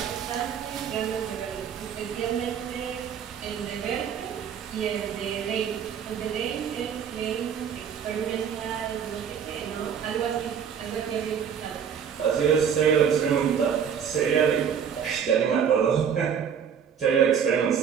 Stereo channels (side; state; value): left; quieter; 7.7 dB